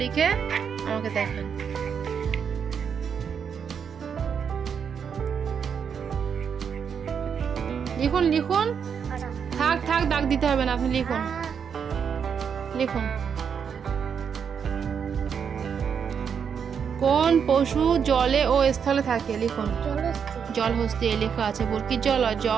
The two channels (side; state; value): left; quieter; 7.1 dB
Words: লিখে আমাকে দেখান। লিখুন লিখুন, থাক থাক দাগ দিতে হবে না, আপনি লিখুন লিখুন। কোন পশু জলে ও স্থলে থাকে? লিখুন। জলহস্তী লেখা আছে। বুরকির জল